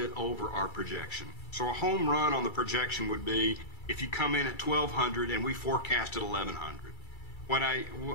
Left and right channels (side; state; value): right; late; 2.3 ms